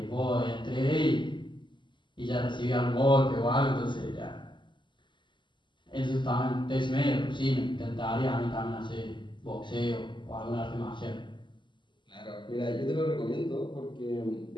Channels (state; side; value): late; right; 0.23 ms